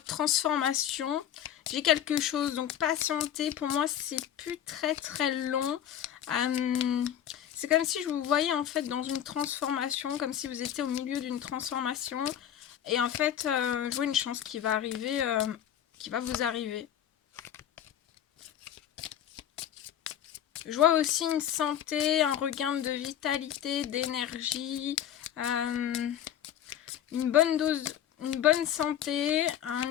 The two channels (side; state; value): right; quieter; 10.4 dB